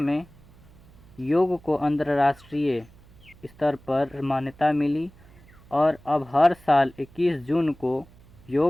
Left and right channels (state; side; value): noise; right; hum, 25 dB below the sound